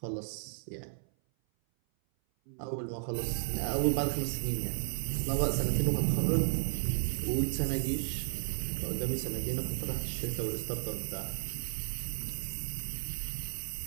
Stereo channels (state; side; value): silent; left; 55 dB below the other